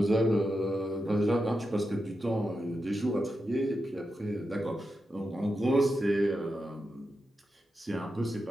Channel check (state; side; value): normal; both; correlation 0.88